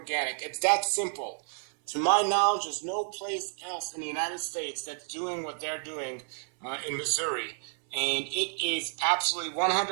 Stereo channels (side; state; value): left; silent; 58 dB below the other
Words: It's that simple. To my knowledge, there's no place else in the United States that's doing what they're doing in Missouri. And it is absolutely